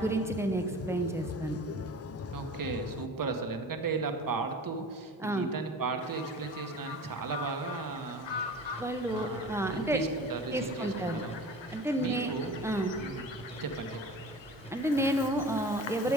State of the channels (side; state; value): both; normal; correlation 0.38